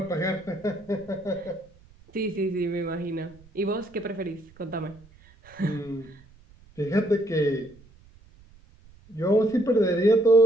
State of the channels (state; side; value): noise; right; rumble, 26 dB below the sound